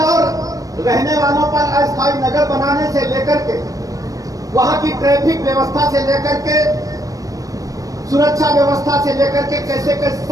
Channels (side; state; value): left; late; 0.16 ms